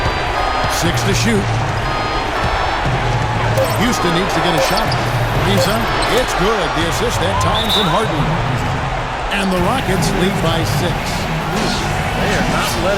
6 to shoot. Houston needs to get a shot. Lisa, it's good. The assist that time from Harden. And the Rockets lead by 6. They are not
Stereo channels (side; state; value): both; identical; correlation 1.00